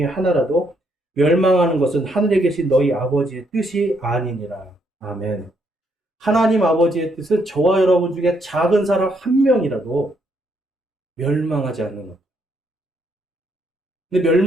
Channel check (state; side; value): normal; both; correlation 0.74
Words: 하나라도 멸망하는 것은 하늘에 계신 너희 아버지의 뜻이 아니니라. 아멘. 하나님 아버지의 뜻은 저와 여러분 중에 작은 사람 한 명이라도 멸망하지 않는 것. 근데